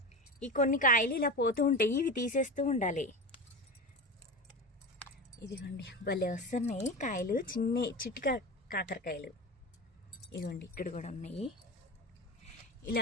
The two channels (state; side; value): normal; both; correlation 0.25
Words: ఈ కొన్ని కాయలు ఇలా పోతూ ఉంటాయి, ఇవి తీసేస్తూ ఉండాలి. ఇదిగోండి భలే వస్తున్నాయి కాయలు, చిట్టి కాకరకాయలు. ఇదిగోండి ఇక్కడ కూడా ఉన్నాయి.